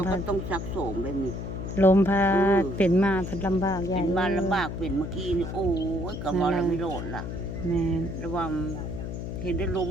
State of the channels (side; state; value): left; noise; hum, 6 dB below the sound